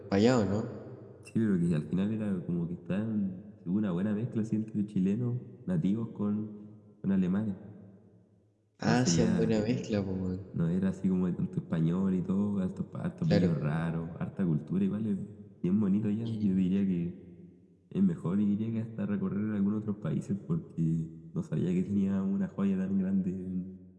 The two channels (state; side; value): identical; both; correlation 1.00